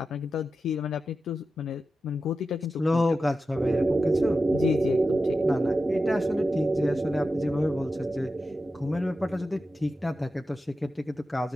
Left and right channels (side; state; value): both; normal; correlation 0.91